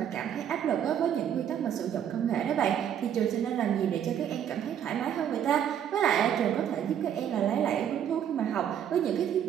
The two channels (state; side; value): quieter; left; 9.4 dB